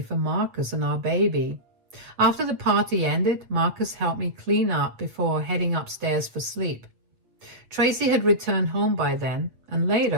Marcus and our baby. After the party ended, Marcus helped me clean up before heading upstairs for sleep. Tracy had returned home by then, and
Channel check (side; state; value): left; late; 8.2 ms